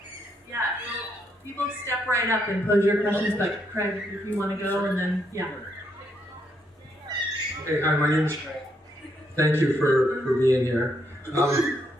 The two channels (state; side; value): normal; both; correlation 0.76